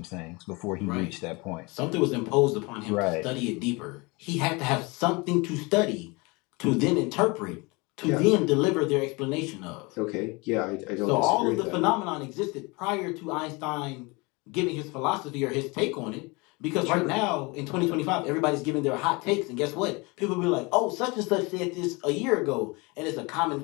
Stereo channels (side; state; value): right; quieter; 26.7 dB